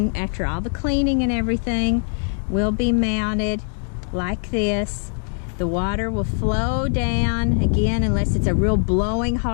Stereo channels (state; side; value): silent; right; 58 dB below the other